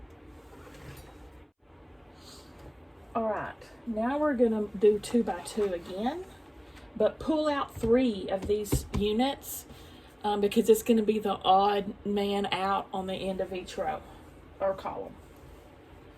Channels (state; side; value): identical; both; correlation 1.00